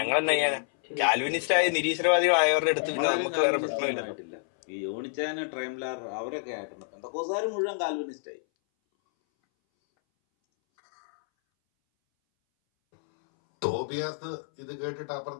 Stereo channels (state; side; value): silent; right; 59 dB below the other